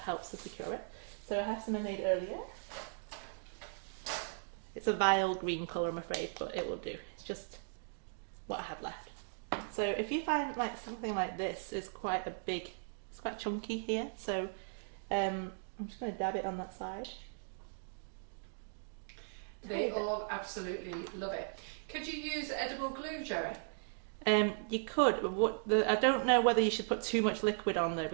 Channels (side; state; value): left; silent; digital silence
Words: to secure it. So I have some I made earlier. It's a vile green colour, I'm afraid, but it will do. It's just what I have left. So if you find like something like this is quite a big, it's quite chunky here, so I'm just going to dab it on that side. They all absolutely love it. Could you use edible glue, Gerry? You could, but I don't know whether you should put too much liquid on though,